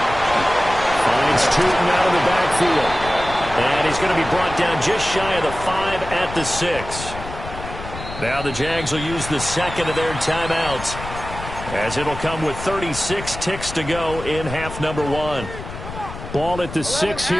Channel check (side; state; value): left; noise; rumble, 11 dB below the sound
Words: Finds Tootin out of the backfield. And he's going to be brought down just shy of the 5 at the 6. Now the Jags will use the second of their timeouts, as it'll come with 36 ticks to go in half number 1. Ball at the 6